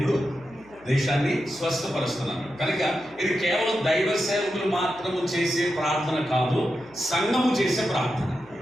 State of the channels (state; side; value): noise; right; hum, 27 dB below the sound